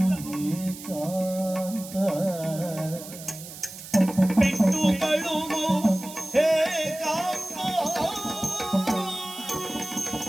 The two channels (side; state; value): right; noise; hiss, 14 dB below the sound